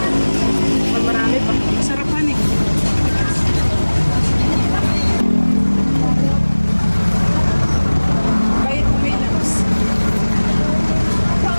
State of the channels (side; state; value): both; inverted; correlation -1.00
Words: Pag marami pa. Sarapan eh. Kahit may labs.